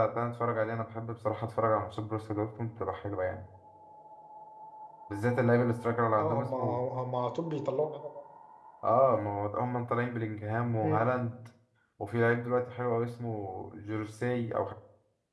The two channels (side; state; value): both; identical; correlation 1.00